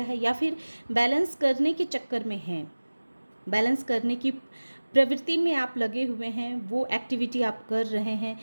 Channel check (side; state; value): both; inverted; correlation -1.00